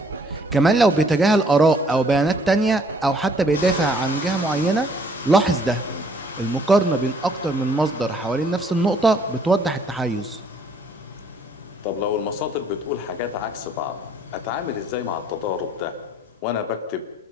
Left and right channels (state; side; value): normal; both; correlation 0.62